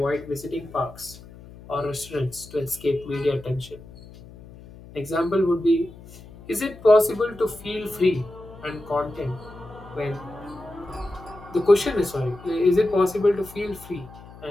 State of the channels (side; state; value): left; noise; hum, 19 dB below the sound